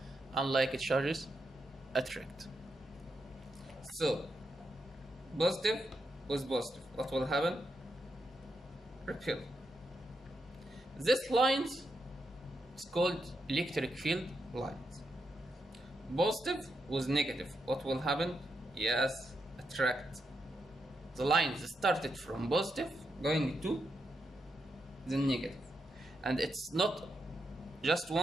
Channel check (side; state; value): both; normal; correlation 0.83